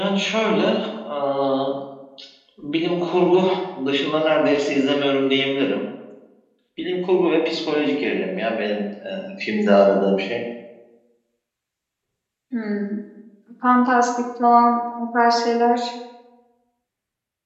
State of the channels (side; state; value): both; identical; correlation 1.00